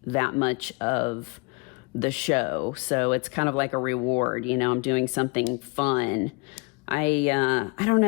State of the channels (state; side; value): quieter; right; 29.6 dB